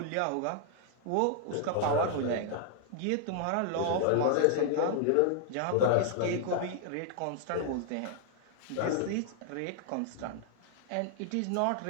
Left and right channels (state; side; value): different; both; correlation 0.00